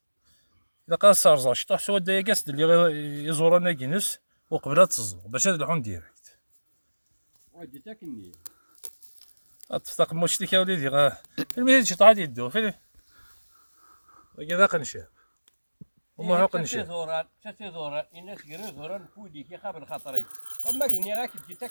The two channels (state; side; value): inverted; both; correlation -1.00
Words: إلا قال صار شطح سوا دايا كاس اللي يزورنا كينس وقبلها تزور باش هاد الحون ديريكت ودي تاكني تفتق مشتك يا وليدي المهم شي طاعت يدو فين كذا قنشاب وما هو قنشاب شتي زوران الناس كيرو زوران فودي كي خابر خاطري اما كني راك تجي